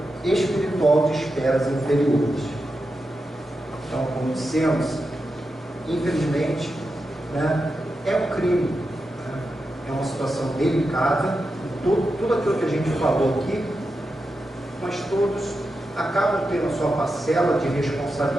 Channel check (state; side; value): normal; both; correlation 0.89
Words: espiritual de esferas inferiores. Então, como dissemos, infelizmente, né, é um crime, né, é uma situação delicada, tudo aquilo que a gente falou aqui, mas todos acabam tendo a sua parcela de